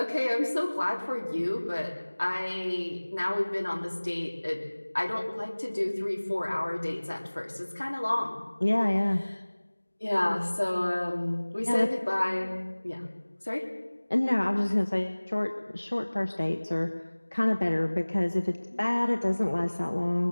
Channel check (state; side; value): inverted; both; correlation -1.00